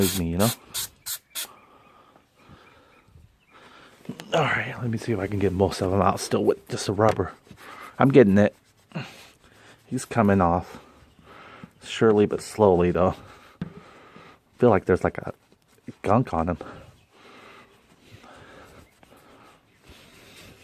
me, you know? Alright, let me see if I can get most of them out still with just a rubber. I'm getting it. He's coming off. Surely but slowly though. I feel like there's like a gunk on him.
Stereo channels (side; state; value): both; identical; correlation 1.00